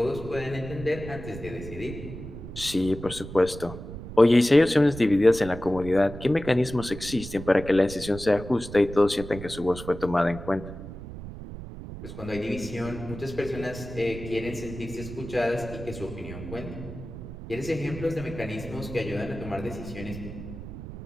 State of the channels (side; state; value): right; noise; rumble, 11 dB below the sound